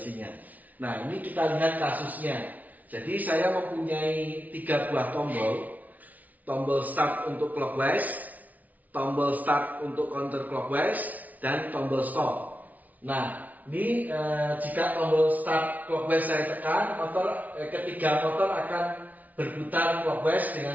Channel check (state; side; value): late; left; 0.075 ms